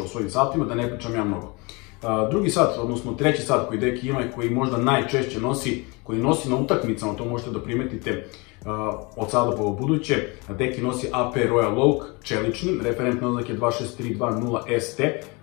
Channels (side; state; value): right; quieter; 27.8 dB